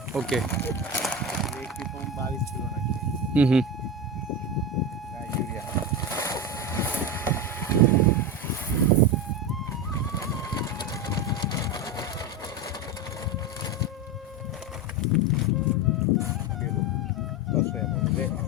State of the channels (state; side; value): normal; both; correlation 0.18